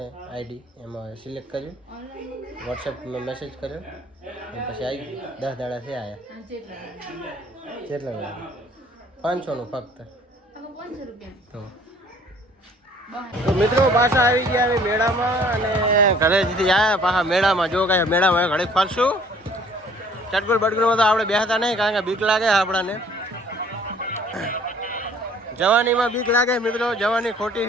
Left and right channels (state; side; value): normal; both; correlation 0.56